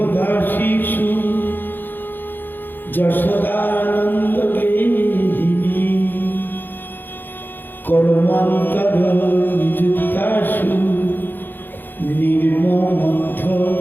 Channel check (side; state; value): right; late; 0.092 ms